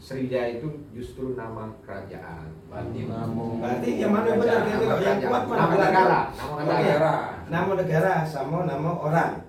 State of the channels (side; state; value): both; identical; correlation 1.00